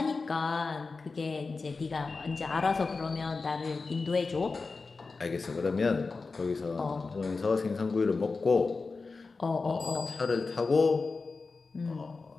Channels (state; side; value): quieter; right; 4.1 dB